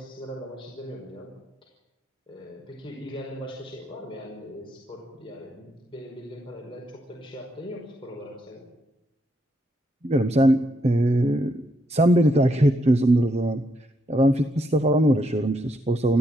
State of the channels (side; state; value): both; normal; correlation 0.77